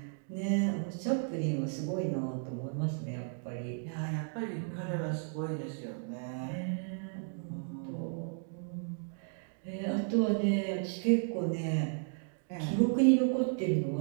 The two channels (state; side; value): silent; left; 55 dB below the other